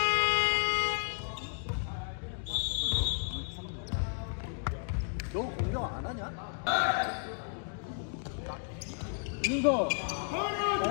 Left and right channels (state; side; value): silent; right; 56 dB below the other